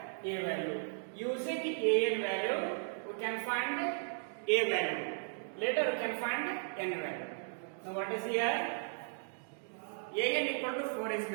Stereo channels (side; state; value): left; silent; digital silence